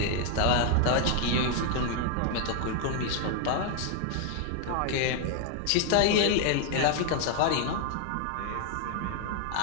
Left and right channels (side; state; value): both; different; correlation 0.00